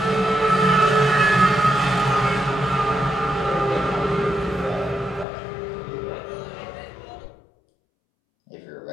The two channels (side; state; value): right; drops out; at 5.2 s